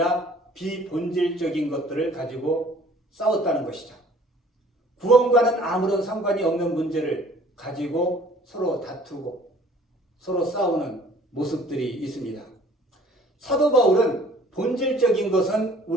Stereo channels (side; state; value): both; normal; correlation 0.54